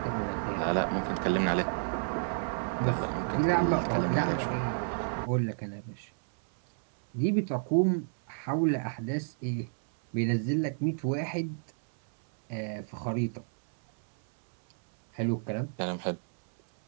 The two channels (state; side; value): silent; left; 58 dB below the other